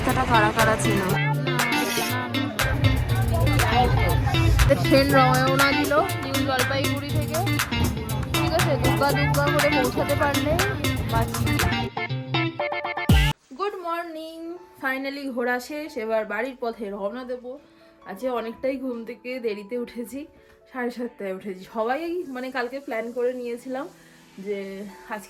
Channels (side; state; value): both; identical; correlation 1.00